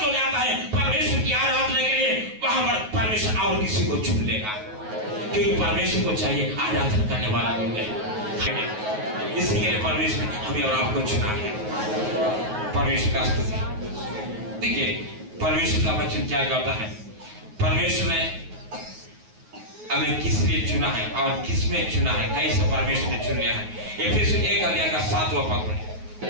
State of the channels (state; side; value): late; left; 9.4 ms